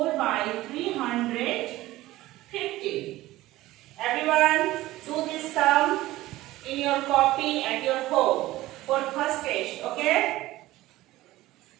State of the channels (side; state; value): left; quieter; 17.0 dB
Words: by 350. Everyone, do this sum in your copy at your home for first test. Okay?